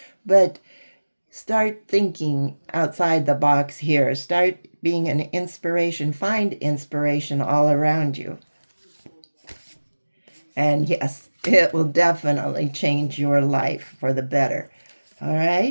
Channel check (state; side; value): inverted; both; correlation -1.00